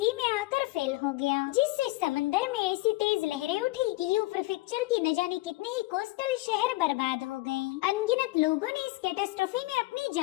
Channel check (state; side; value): quieter; right; 20.2 dB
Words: में आकर फेल हो गया, जिससे समंदर में ऐसी तेज लहरें उठी कि यू प्रीफेक्चर की न जाने कितने ही कोस्टल शहर बर्बाद हो गए। अनगिनत लोगों ने इस कैटास्ट्रोफी में अपनी